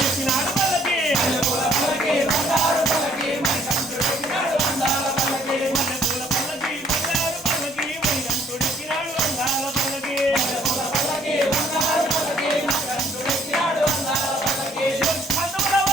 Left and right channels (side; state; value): both; normal; correlation 0.63